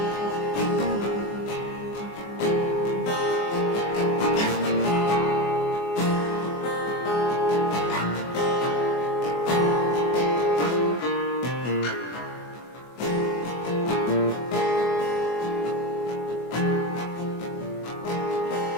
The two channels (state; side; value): late; right; 24 ms